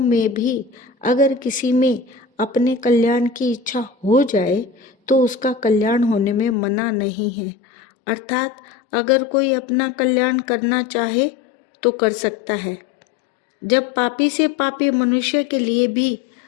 भी अगर किसी में अपने कल्याण की इच्छा हो जाए तो उसका कल्याण होने में मना नहीं है। अर्थात अगर कोई अपना कल्याण करना चाहे तो कर सकता है। जब पापी से पापी मनुष्य के लिए भी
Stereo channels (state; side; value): drops out; right; at 6.6 s